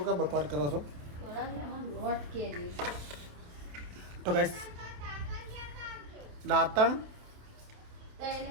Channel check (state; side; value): late; left; 27 ms